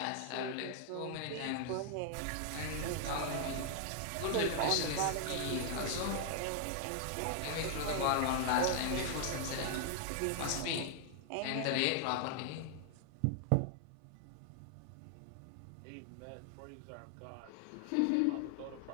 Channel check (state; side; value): different; both; correlation 0.00